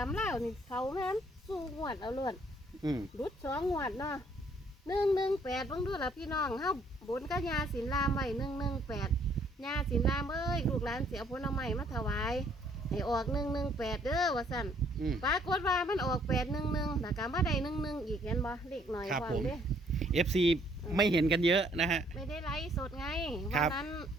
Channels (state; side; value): normal; both; correlation 0.64